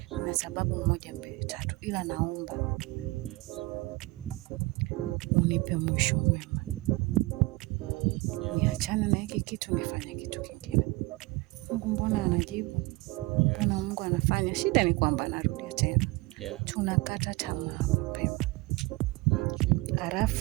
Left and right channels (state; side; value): quieter; left; 22.7 dB